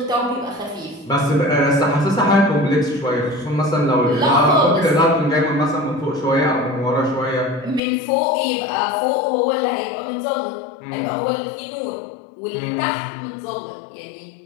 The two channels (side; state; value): right; drops out; at 7.8 s